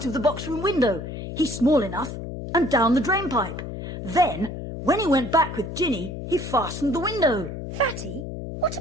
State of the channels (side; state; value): left; noise; hum, 7 dB below the sound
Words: of the box room window. He's small enough. And down the drain pipe. Then, when he went back with Ginny, he fastened the window. Fatty, what